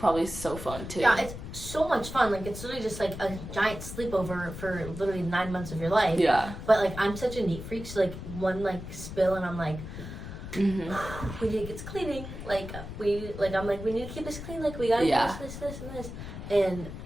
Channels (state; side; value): noise; left; rumble, 10 dB below the sound